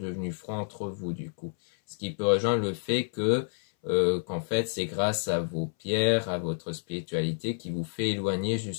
froides entre vous du coup. Ce qui peut rejoindre le fait que qu'en fait c'est grâce à vos pierres, à votre spiritualité qui vous fait éloigner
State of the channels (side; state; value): right; silent; 58 dB below the other